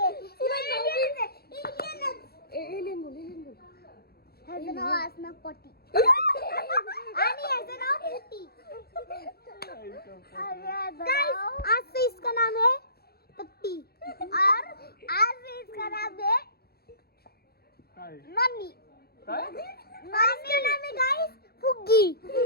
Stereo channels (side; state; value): right; late; 0.46 ms